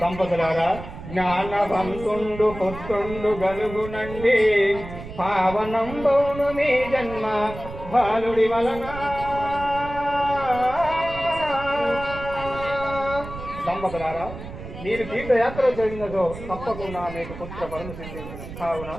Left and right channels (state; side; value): noise; right; rumble, 12 dB below the sound